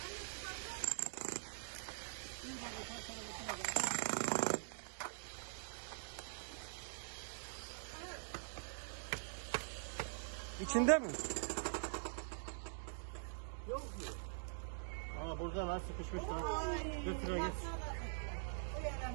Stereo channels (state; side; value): silent; left; digital silence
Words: İçinde mi? Yok mu? Aa burada lan sıkışmış lan. Götür git.